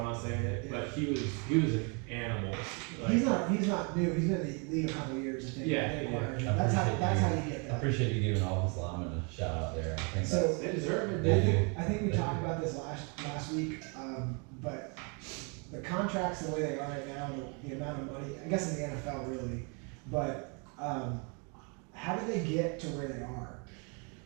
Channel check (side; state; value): left; quieter; 34.9 dB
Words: not saying it. Yeah. But he was an animal. Like, He's not new. He's been in the league a couple of years. I think. Yeah, They yeah. acquired him. I That's how appreciate you get I that. appreciate you giving all his linemen a shout out there. I think So- they deserve it. They I think we They talked do. about this last week, but the contracts the way they are right now, the amount of money, I guess in the NFL really, but how did they get to where they are?